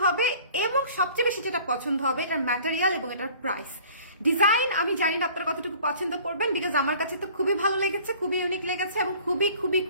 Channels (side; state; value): both; inverted; correlation -0.50